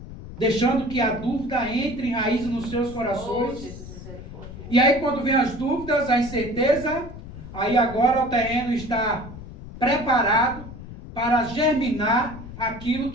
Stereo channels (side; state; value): left; noise; rumble, 13 dB below the sound